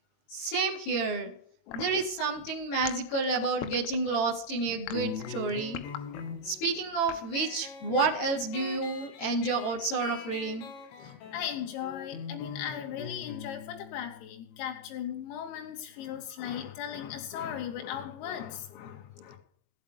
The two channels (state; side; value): late; right; 22 ms